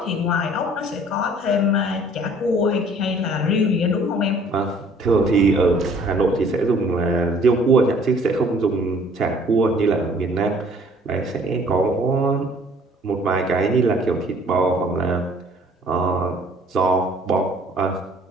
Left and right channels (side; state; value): both; normal; correlation 0.56